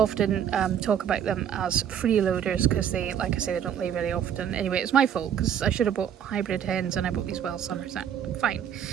talk about them as freeloaders, because they, like I say, they don't lay very often. Anyway, it's my fault, because I should have bought hybrid hens, and I bought these well summers. Fine.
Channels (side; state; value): left; quieter; 9.0 dB